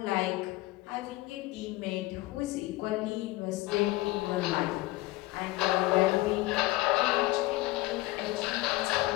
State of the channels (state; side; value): quieter; right; 19.5 dB